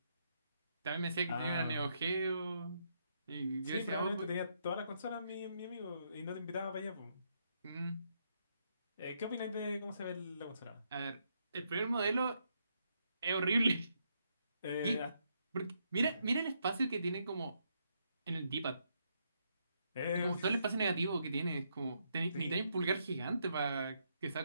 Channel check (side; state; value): both; inverted; correlation -0.77